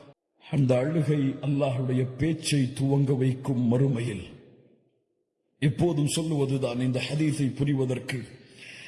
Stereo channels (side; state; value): both; identical; correlation 1.00